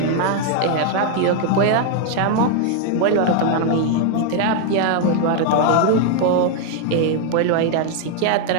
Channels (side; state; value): both; different; correlation 0.00